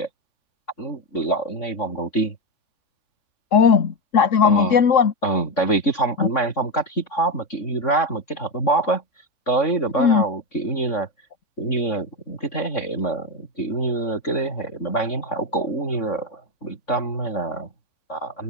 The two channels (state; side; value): late; right; 3.6 ms